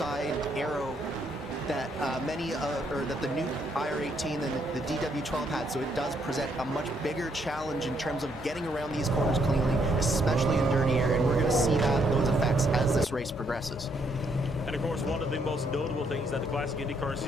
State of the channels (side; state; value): both; normal; correlation 0.72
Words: arrow that that the new IR18 and the DW12 had, so it does present a much bigger challenge in terms of getting around these corners cleanly, especially in dirty air, and we're going to see those effects as this race progresses. And of course, one of the most notable things that the Classic IndyCar